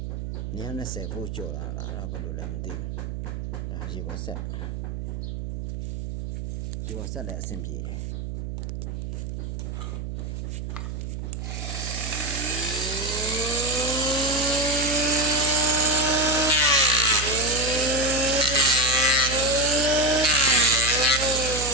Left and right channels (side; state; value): right; noise; hum, 6 dB below the sound